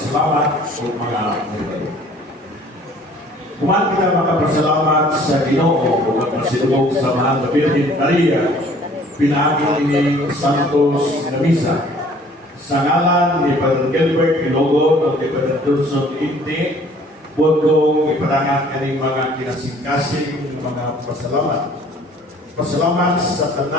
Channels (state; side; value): normal; both; correlation 0.54